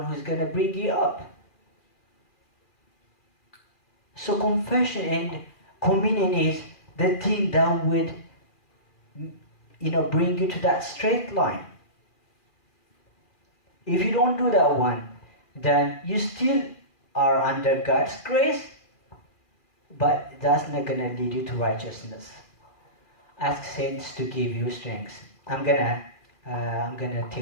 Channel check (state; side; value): late; right; 2.4 ms